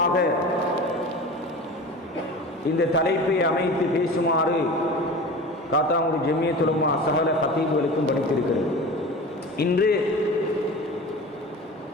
இந்த தலைப்பை அமைத்து பேசுமாறு காத்தாங்குடி ஜமியத் உலமா சகல கத்தீபுகளுக்கும் படித்திருக்கிறது. இன்று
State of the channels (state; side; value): normal; both; correlation 0.34